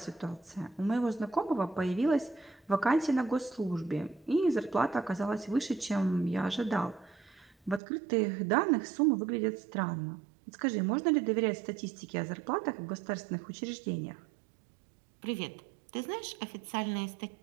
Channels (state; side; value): drops out; left; at 7.8 s